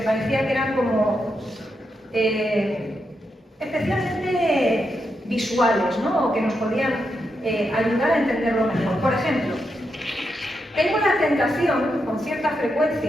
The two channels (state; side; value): normal; both; correlation 0.84